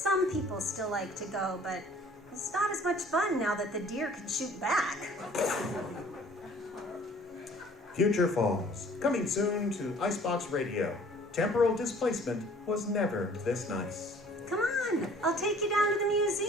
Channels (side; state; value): both; normal; correlation 0.53